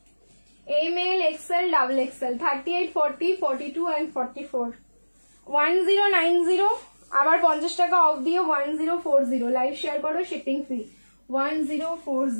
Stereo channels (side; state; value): both; inverted; correlation -1.00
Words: ML, XL, double XL, 38, 40, 42 and 44, 1090, আবার 50 টাকা অফ দিয়ে 1040, লাইভ শেয়ার করো, শিপিং ফ্রি,